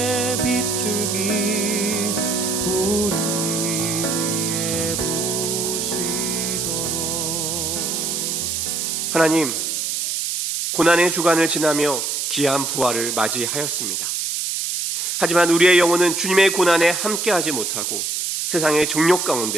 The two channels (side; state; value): right; noise; hiss, 1 dB below the sound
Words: 빗줄기 우리 위에 부시도록 하나님, 고난의 주간을 지나며 귀한 부활을 맞이하였습니다. 하지만 우리의 영혼은 주님의 고난에 함께하지 못하고 세상의 정욕